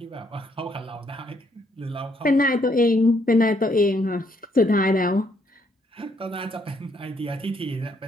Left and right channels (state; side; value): normal; both; correlation 0.71